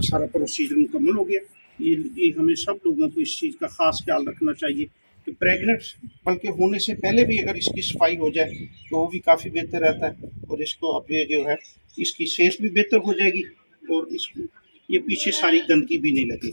प्रोसीजर मुकम्मल हो गया। ये हमें सब लोगों को इस चीज़ का ख़ास ख्याल रखना चाहिए कि प्रेग्नेंट बल्कि होने से पहले भी अगर इसकी सफाई हो जाए तो वो भी काफ़ी बेहतर रहता है, और इसको अब ये जो है इसकी सेहत भी बेहतर हो जाएगी और इसको ये पीछे सारी गंदगी भी नहीं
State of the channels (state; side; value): inverted; both; correlation -1.00